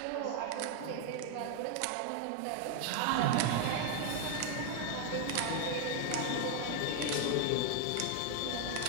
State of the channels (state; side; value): different; both; correlation 0.00